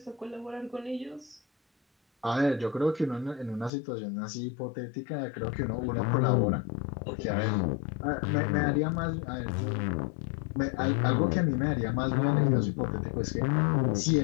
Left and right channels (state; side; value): drops out; right; at 3.7 s